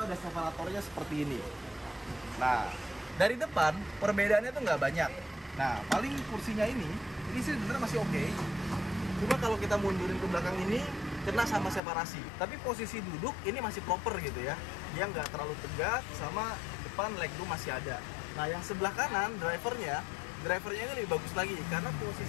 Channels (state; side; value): drops out; right; at 11.8 s